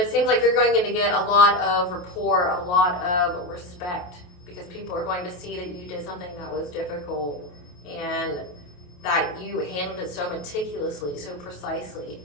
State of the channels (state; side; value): late; right; 28 ms